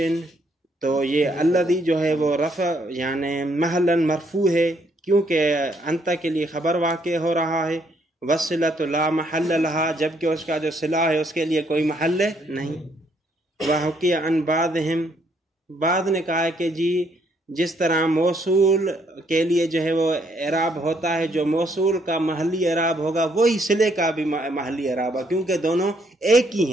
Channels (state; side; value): normal; both; correlation 0.70